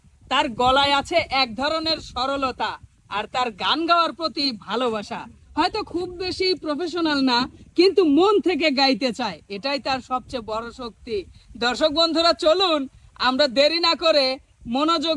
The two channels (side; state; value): both; identical; correlation 1.00